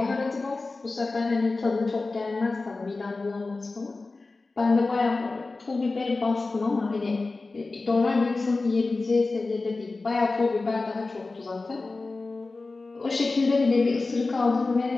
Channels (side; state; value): right; quieter; 3.6 dB